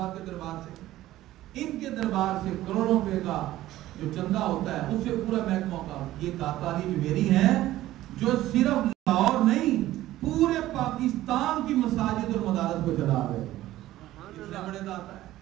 کے دربار سے. ان کے دربار سے کروڑوں روپے کا جو چندہ ہوتا ہے اس سے پورا محکمہ کا. یہ داتا علی جویری ہیں جو صرف لاہور نہیں پورے پاکستان کی مساجد اور مدارس کو چلا رہے ہیں. اتنے بڑے داتا ہے.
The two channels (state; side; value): quieter; left; 15.0 dB